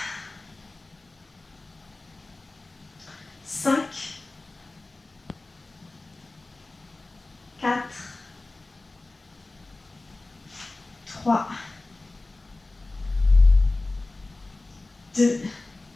5, 3, 2,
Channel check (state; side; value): quieter; right; 3.1 dB